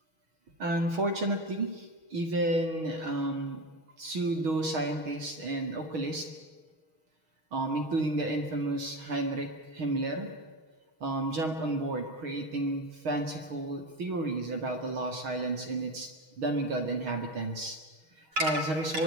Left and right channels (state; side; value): late; left; 6.3 ms